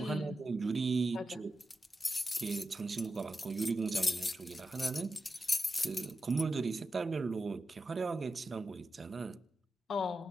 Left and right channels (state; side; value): normal; both; correlation 0.90